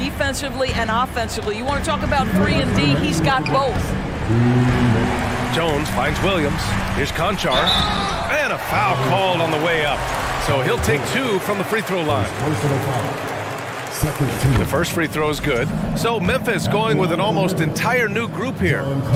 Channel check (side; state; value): both; identical; correlation 1.00